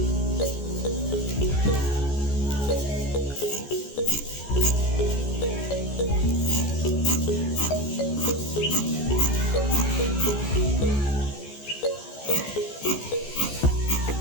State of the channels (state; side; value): late; right; 14 ms